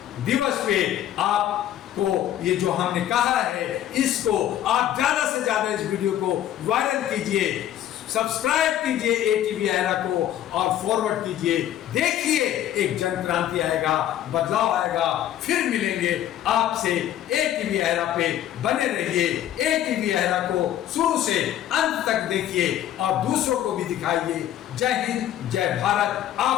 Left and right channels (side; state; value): right; quieter; 11.8 dB